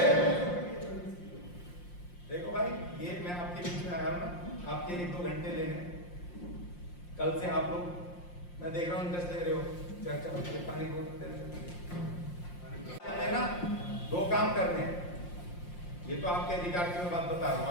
देखो भाई, ये मैं आपके बीच में आया हूं ना, आपके 1-2 घंटे लेने। कल से आप लोग, मैं देख रहा हूँ इंटरेस्ट ले रहे हो, चर्चा होती है, पानी बोलते हैं ना, 2 काम करने हैं। ये तो आपके अधिकार की मैं बात बता रहा हूँ।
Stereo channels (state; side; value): late; right; 5.7 ms